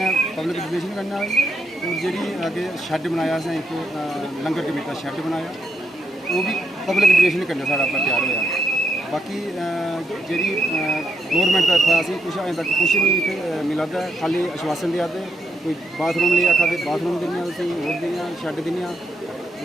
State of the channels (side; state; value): both; normal; correlation 0.79